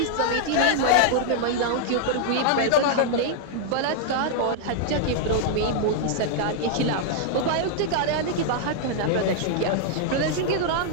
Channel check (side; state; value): both; different; correlation -0.01